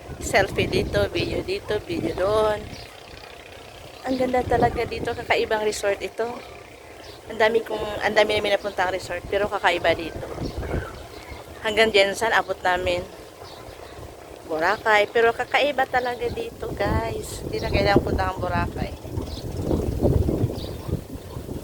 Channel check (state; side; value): identical; both; correlation 1.00